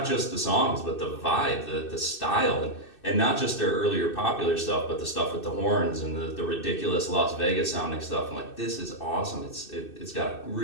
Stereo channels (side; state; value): right; late; 2.6 ms